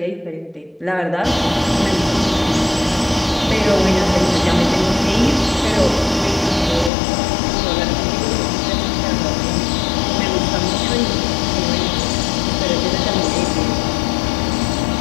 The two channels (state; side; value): drops out; right; at 6.9 s